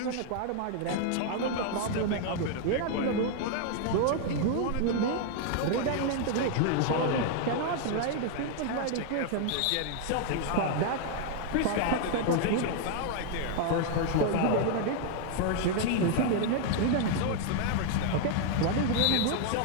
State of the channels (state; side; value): different; both; correlation 0.00